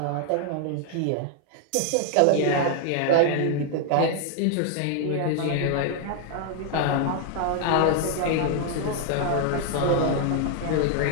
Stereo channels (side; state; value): both; different; correlation 0.00